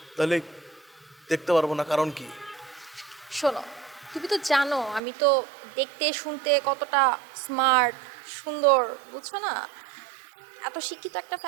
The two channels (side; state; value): left; drops out; at 5.0 s